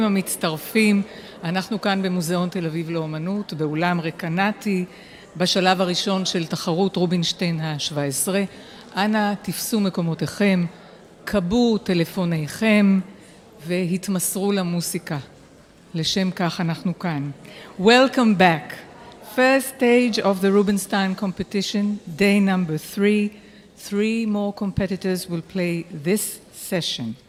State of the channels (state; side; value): identical; both; correlation 1.00